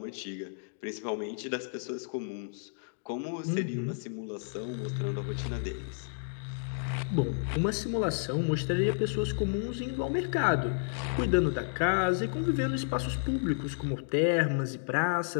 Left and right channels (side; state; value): right; silent; digital silence